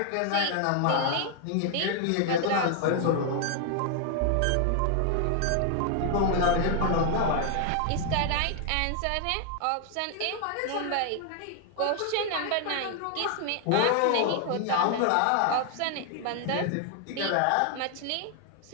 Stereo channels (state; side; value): different; both; correlation 0.00